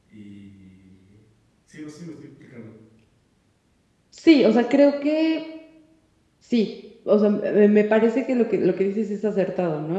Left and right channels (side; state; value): both; identical; correlation 1.00